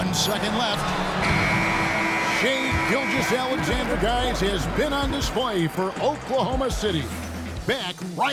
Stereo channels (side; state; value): both; identical; correlation 1.00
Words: second left. Shai Gilgeous-Alexander, guys, has been on display for Oklahoma City. Back